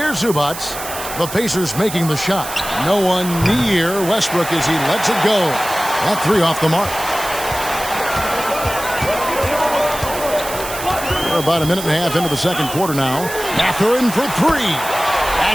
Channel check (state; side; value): noise; right; hiss, 9 dB below the sound